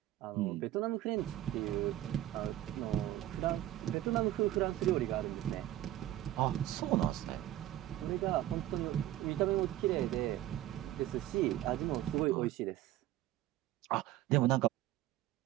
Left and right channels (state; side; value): quieter; left; 14.1 dB